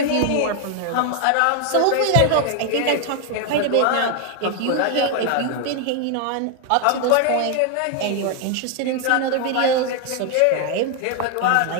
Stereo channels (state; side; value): different; both; correlation 0.01